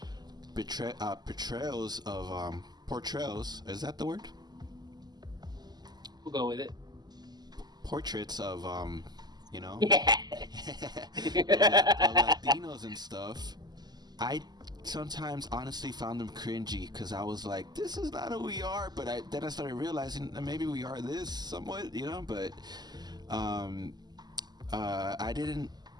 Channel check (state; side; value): late; left; 0.20 ms